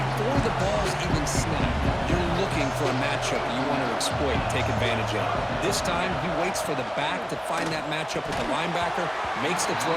the ball's even snapped, you're looking for a matchup you want to exploit and take advantage of. This time, he waits for the back to find that matchup with the linebacker, makes the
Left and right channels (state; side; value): identical; both; correlation 1.00